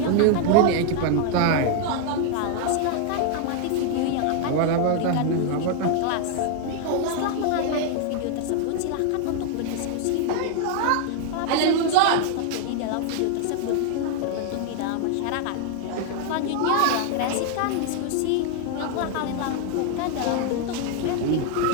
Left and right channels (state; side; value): different; both; correlation 0.00